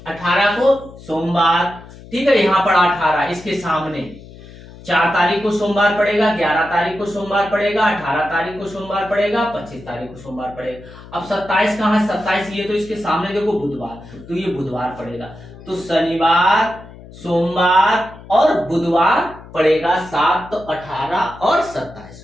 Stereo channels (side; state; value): left; noise; hum, 18 dB below the sound